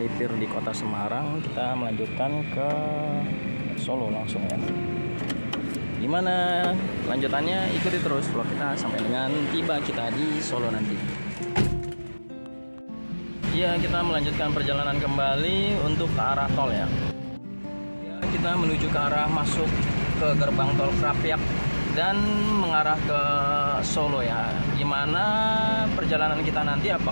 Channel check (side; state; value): both; inverted; correlation -1.00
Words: di kota Semarang, kita melanjutkan ke Solo langsung ya. Gimana lanjutannya? Ikuti terus vlog kita sampai dengan tiba kita di Solo nanti. Ya, kita melanjutkan perjalanan kembali untuk ke arah tol ya. Kita menuju ke arah masuk ke gerbang tol Krapyak dan mengarah ke Solo ya. Gimana perjalanan kita nanti?